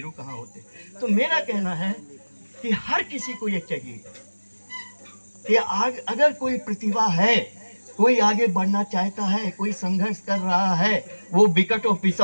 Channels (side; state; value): both; inverted; correlation -1.00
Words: कहाँ होते। तो मेरा कहना है कि हर किसी को ये चाहिए कि अगर कोई प्रतिभा है, कोई आगे बढ़ना चाहता है, कोई संघर्ष कर रहा है, वो विकट और